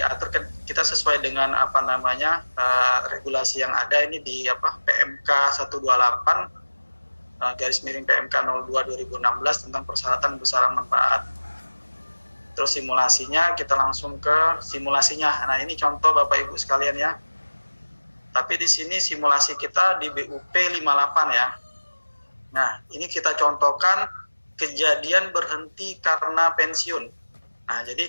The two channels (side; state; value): both; inverted; correlation -1.00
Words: kita sesuai dengan regulasi yang ada ini di PMK 128 /PMK 02 2016 tentang persyaratan besaran manfaat. Terus simulasinya kita langsung ke simulasinya. Nah, ini contoh Bapak Ibu sekalian ya. Tapi di sini simulasi kita di BUP 58 ya. Nah, ini kita contohkan kejadian berhenti karena pensiun. Nah,